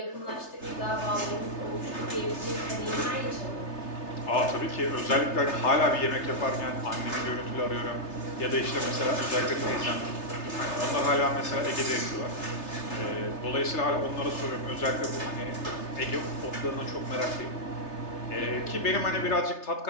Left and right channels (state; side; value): late; right; 3.3 ms